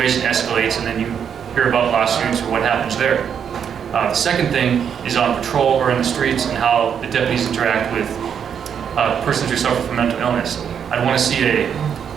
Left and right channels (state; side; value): quieter; left; 7.9 dB